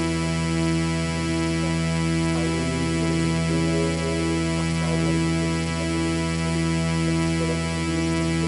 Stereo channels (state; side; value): identical; both; correlation 1.00